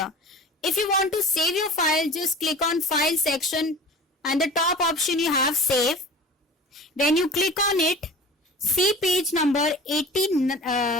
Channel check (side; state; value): both; normal; correlation 0.39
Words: If you want to save your file, just click on file section and the top option you have save. When you click on it, see page number